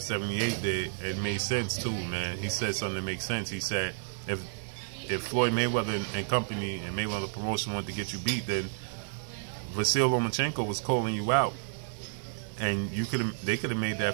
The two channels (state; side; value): silent; left; digital silence